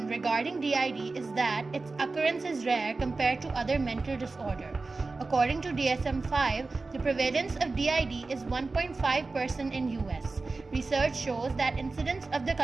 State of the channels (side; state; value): left; quieter; 3.7 dB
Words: regarding DID is that its occurrence is rare compared to other mental disorder. According to DSM-5, the prevalence of DID is 1.5% in US. Research shows that incidence of the